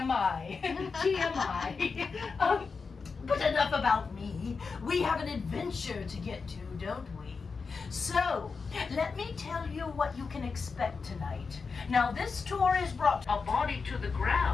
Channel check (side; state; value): right; quieter; 4.9 dB